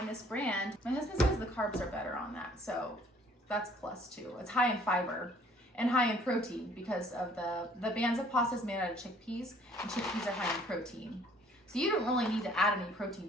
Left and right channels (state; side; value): normal; both; correlation 0.58